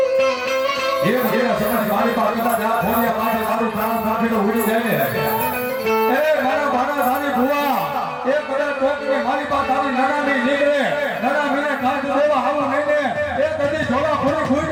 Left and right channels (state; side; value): identical; both; correlation 1.00